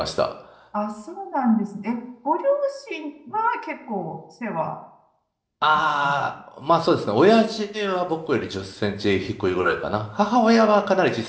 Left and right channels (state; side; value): identical; both; correlation 1.00